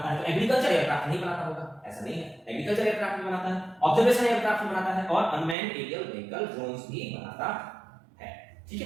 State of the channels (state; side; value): drops out; left; at 5.6 s